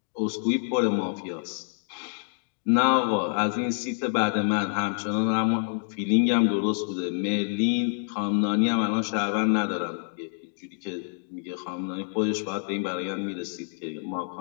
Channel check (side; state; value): right; silent; 60 dB below the other